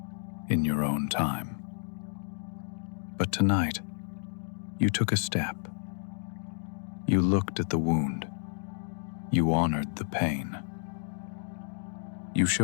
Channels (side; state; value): right; silent; digital silence